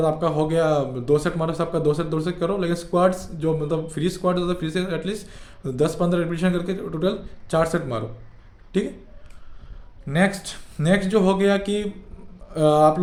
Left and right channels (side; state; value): both; identical; correlation 1.00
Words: आपका हो गया 2 सेट मारो, सबका 2 सेट करो। लेकिन स्क्वाट्स जो मतलब फ्री स्क्वाट होता है, फ्री से एटलीस्ट 10-15 रिपीटेशन करके टोटल 4 सेट मारो, ठीक है। नेक्स्ट जो हो गया कि आप